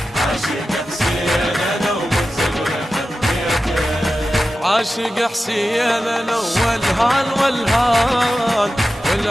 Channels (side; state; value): both; normal; correlation 0.93